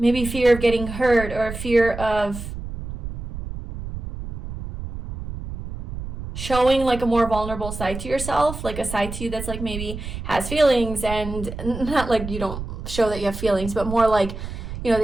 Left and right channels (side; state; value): right; noise; rumble, 8 dB below the sound